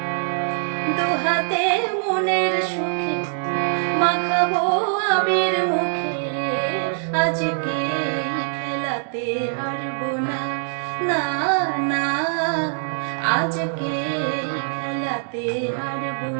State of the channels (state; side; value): silent; left; digital silence